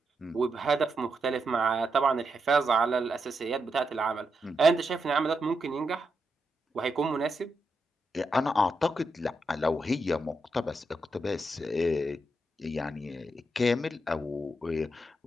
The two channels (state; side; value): normal; both; correlation 0.84